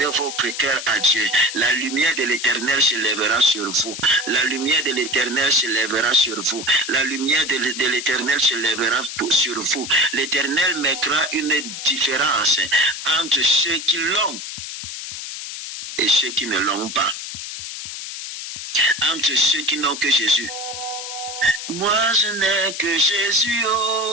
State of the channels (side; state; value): left; noise; hiss, 8 dB below the sound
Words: votre cœur à Dieu. La lumière de l'Éternel se lèvera sur vous. La lumière de l'Éternel se lèvera sur vous. La lumière de l'Éternel se lèvera sur vous. L'Éternel mettra une différence entre ceux qui l'ont et ceux qui ne l'ont pas. Entre ceux qui n'ont que Jésus. Moi je n'ai que Jésus,